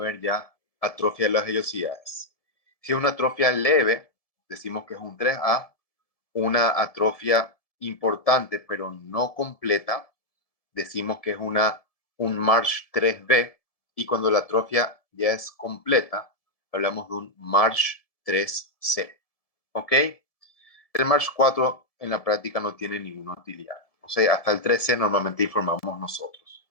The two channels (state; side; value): late; right; 1.7 ms